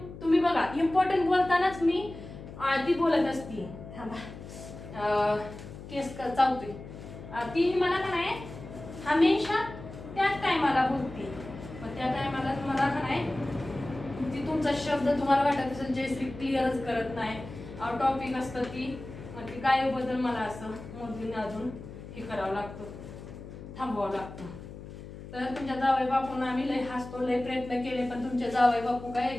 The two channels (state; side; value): noise; left; hum, 13 dB below the sound